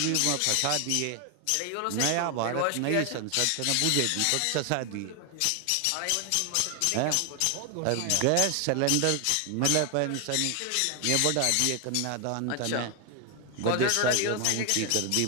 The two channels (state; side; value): different; both; correlation 0.00